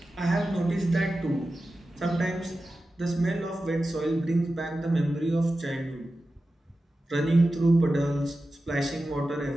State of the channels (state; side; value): normal; both; correlation 0.93